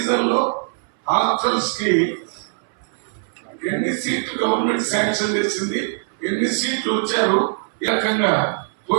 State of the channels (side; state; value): left; silent; 63 dB below the other